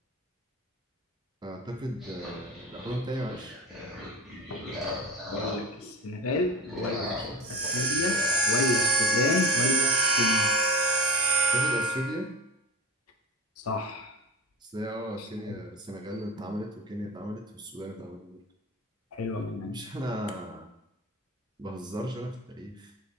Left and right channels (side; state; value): both; normal; correlation 0.30